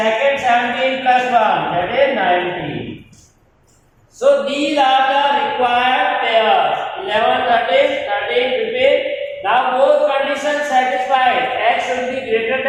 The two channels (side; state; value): both; identical; correlation 1.00